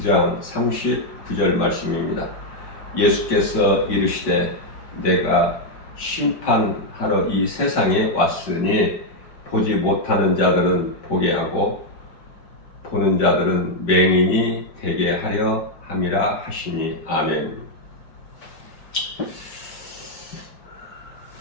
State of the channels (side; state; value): right; late; 5.2 ms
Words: 39절 말씀입니다. 예수께서 이르시되 내가 심판하러 이 세상에 왔으니 보지 못하는 자들은 보게 하고 보는 자들은 맹인이 되게 하려 함이라 하시니 아멘.